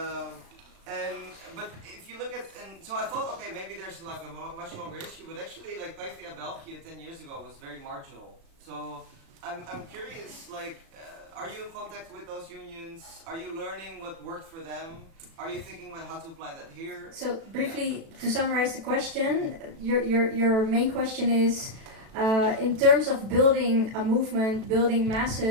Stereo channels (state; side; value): late; left; 36 ms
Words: But if you look at, and so I thought, okay, maybe there's like a much longer issue, but actually like PvdA Belgium 10 years ago was very marginal. So I'm curious, like, are you in contact with those unions? Are you learning what worked for them? Are you thinking about how to apply that here? So briefly, to summarize the question, your main question is, in terms of building a movement, building